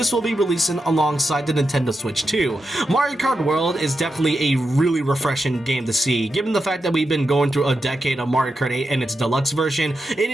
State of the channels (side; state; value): both; normal; correlation 0.87